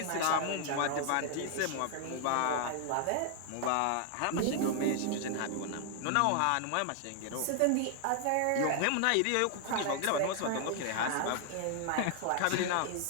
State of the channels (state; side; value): different; both; correlation 0.00